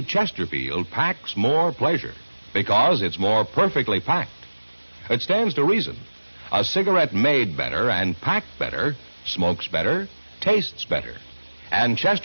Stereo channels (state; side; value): inverted; both; correlation -1.00